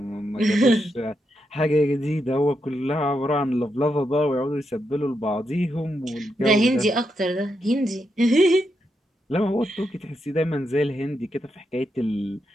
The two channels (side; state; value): both; normal; correlation 0.83